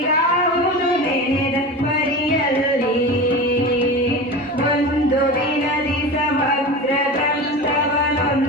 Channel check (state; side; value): normal; both; correlation 0.29